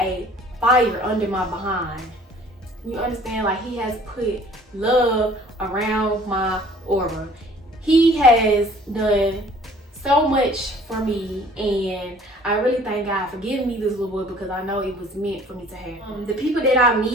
fire under my behind. You understand? Like, he has put love around my aura. He has done so much for me, and I really thank God for giving me this little boy, because I know it was meant for me to have. The people that I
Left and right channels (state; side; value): normal; both; correlation 0.53